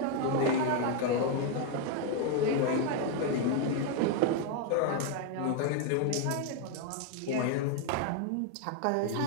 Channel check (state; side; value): different; both; correlation 0.01